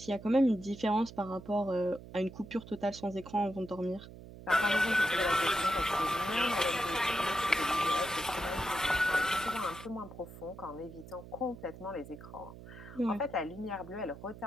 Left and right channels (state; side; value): noise; right; hum, 16 dB below the sound